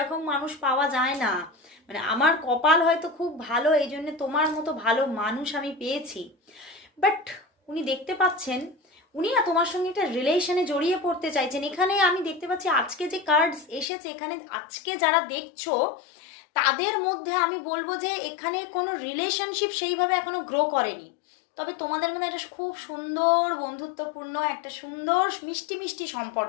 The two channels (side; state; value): right; drops out; at 13.9 s